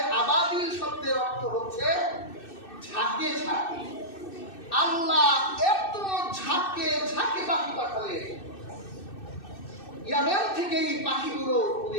আবাবিল শব্দের অর্থ হচ্ছে ঝাঁকে ঝাঁকে। আল্লাহ এত ঝাঁকে ঝাঁকে পাখি পাঠালেন, ইয়ামেন থেকে এই পাখিগুলো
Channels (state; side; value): late; right; 2.6 ms